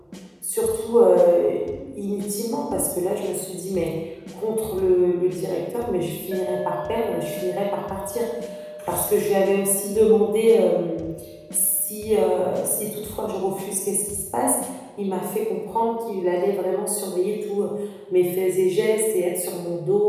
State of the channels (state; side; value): identical; both; correlation 1.00